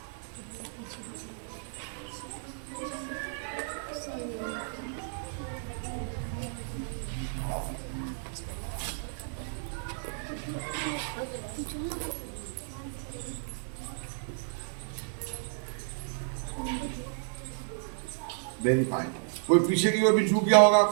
वेरी फाइन। कोई पीछे की ओर भी झुक गया होगा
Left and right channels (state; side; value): silent; left; digital silence